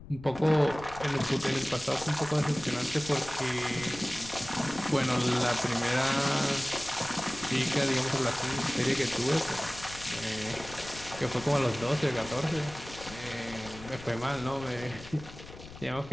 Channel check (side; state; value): left; noise; rumble, 16 dB below the sound